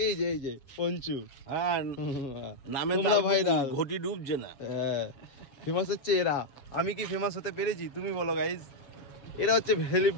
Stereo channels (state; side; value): late; right; 7.3 ms